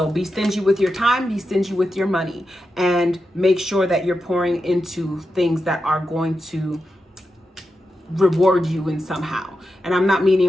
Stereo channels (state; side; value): normal; both; correlation 0.89